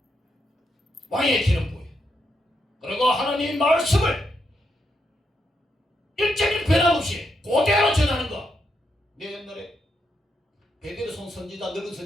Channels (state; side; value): normal; both; correlation 0.81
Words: 왕에게 기름 부어요. 그리고 하나님의 말씀을 일정일 변함없이 그대로 전하는 것. 내 옛날에 베드로손 선지자, 늙은